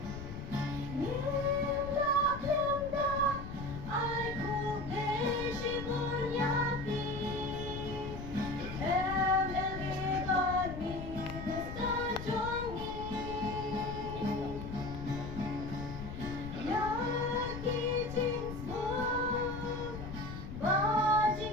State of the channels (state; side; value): noise; left; rumble, 8 dB below the sound